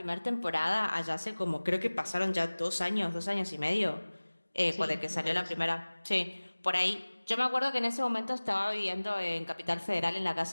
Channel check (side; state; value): both; inverted; correlation -1.00